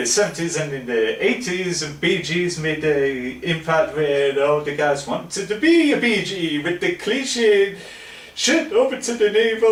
70s and in the 80s, BGs made an impact where all the guys wanted to be a BG with the cliche shit over to the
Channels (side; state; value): both; identical; correlation 1.00